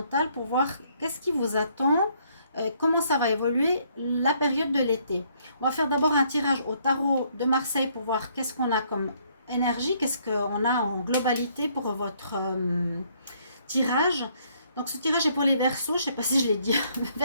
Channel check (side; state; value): both; inverted; correlation -0.67